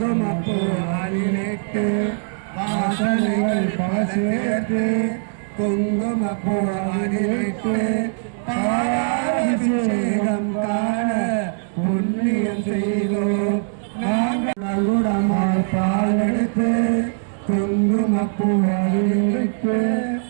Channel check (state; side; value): silent; left; digital silence